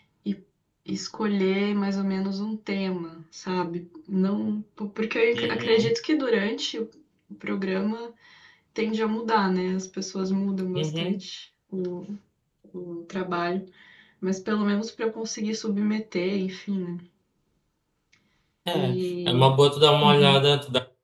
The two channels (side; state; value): both; identical; correlation 1.00